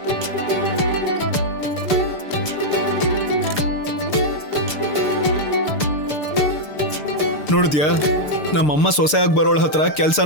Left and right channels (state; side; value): late; right; 6.7 ms